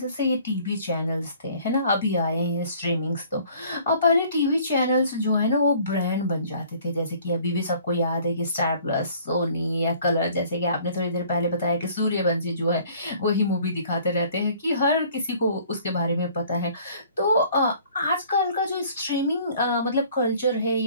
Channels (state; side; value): inverted; both; correlation -0.54